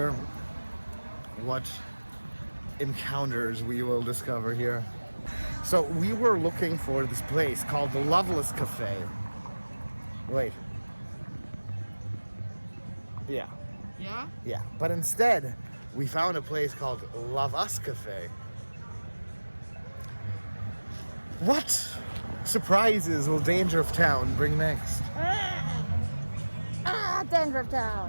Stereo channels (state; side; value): inverted; both; correlation -1.00